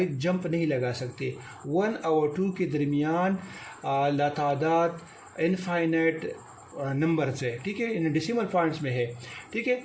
जंप नहीं लगा सकते। 1 और 2 के दरमियान लातादाद इनफाइनाइट नंबर्स है। ठीक है। इन डेसिमल पॉइंट्स में है। ठीक है।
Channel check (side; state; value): both; identical; correlation 1.00